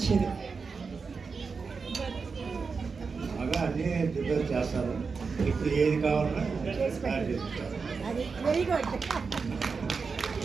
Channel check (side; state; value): left; quieter; 5.0 dB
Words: బాగా అన్నీ ప్రిపేర్ చేస్తారు. ఇప్పుడు ఏది కావాలన్నా తయారు చేస్తారు. అది వెరీ గుడ్.